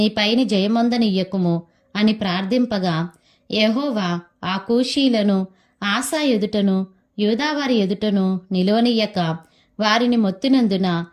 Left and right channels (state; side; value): identical; both; correlation 1.00